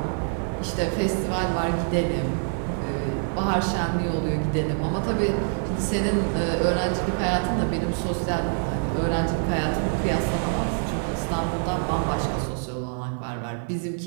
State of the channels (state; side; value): silent; left; 61 dB below the other